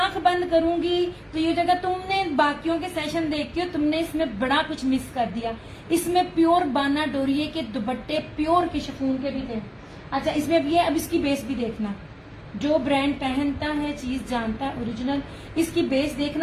बंद करूंगी तो ये जगह तुमने बाकियों के सेशन देखते हो, तुमने इसमें बड़ा कुछ मिस कर दिया। इसमें प्योर बाना डोरिये के दुपट्टे प्योर के शिफॉन के भी थे। अच्छा इसमें भी है, अब इसकी बेस भी देखना। जो ब्रांड पहनता है चीज जानता है ओरिजिनल। इसकी बेस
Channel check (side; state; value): both; identical; correlation 1.00